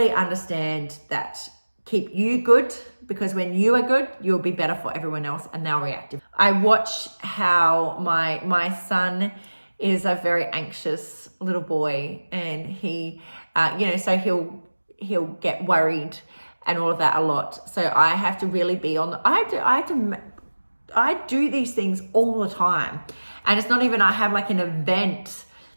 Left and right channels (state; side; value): inverted; both; correlation -1.00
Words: understand that. Keep you good, because when you are good, you'll be better for everyone else and they'll react. I watch how my son is a very anxious little boy, and he, so he'll get worried and all of that a lot. So I have to really be on I do these things all the time. And it's not even I have like an event